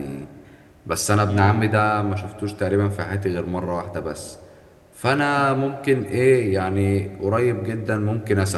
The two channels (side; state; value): both; identical; correlation 1.00